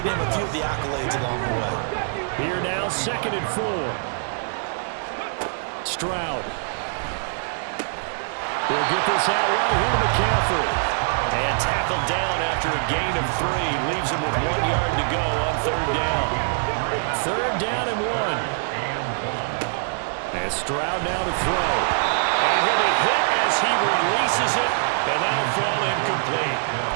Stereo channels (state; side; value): silent; left; digital silence